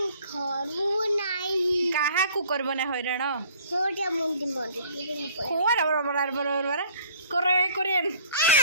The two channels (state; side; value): inverted; both; correlation -0.55